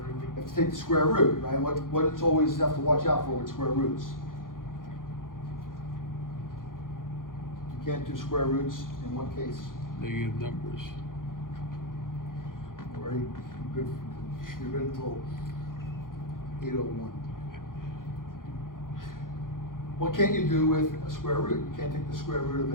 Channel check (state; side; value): late; right; 0.90 ms